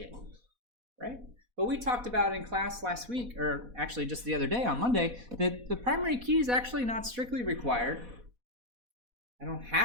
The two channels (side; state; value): left; late; 4.1 ms